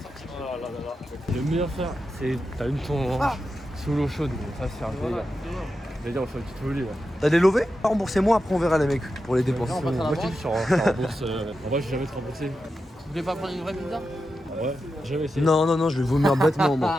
Le meilleur faire, c'est t'as une ton sous l'eau chaude. Ça, c'est un délire. D'ailleurs, on fait une petite folie là. T'as des lovés? Remboursez-moi, après on verra les mecs pour les dépenses. Moi, je t'ai dit, sur rembourse. En vrai, j'ai jamais été remboursé. Vous voulez pas prendre une vraie pizza? Ouais, jamais essayé. Non, je vais vomir bêtement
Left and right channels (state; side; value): normal; both; correlation 0.89